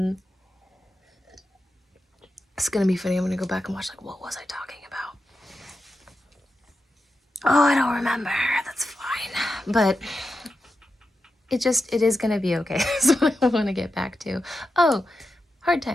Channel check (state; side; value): normal; both; correlation 0.89